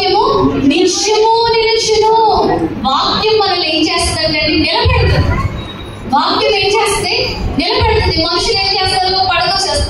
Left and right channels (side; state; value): both; identical; correlation 1.00